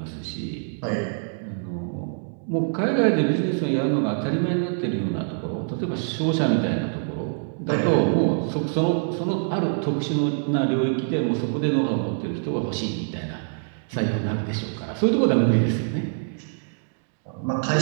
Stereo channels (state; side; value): silent; left; digital silence